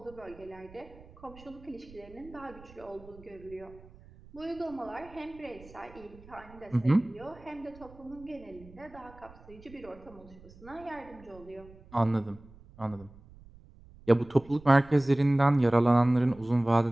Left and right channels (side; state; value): right; noise; rumble, 22 dB below the sound